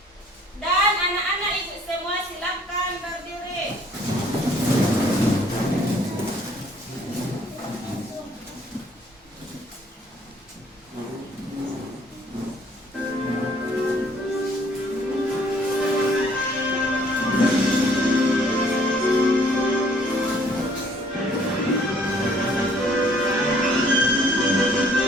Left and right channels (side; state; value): both; normal; correlation 0.60